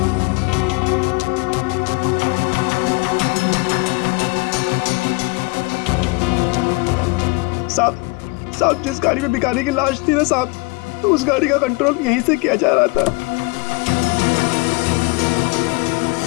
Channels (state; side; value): quieter; right; 26.6 dB